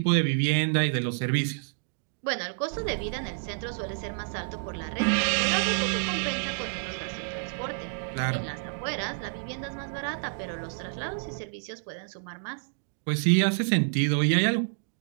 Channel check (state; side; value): silent; left; digital silence